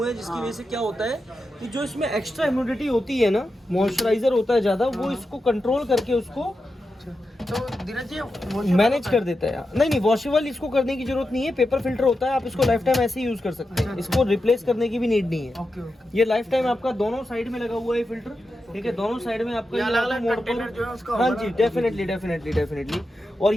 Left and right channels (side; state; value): both; normal; correlation 0.89